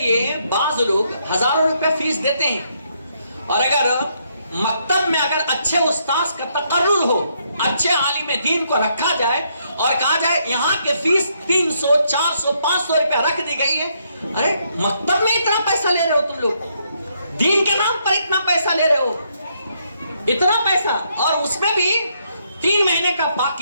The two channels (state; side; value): inverted; both; correlation -0.74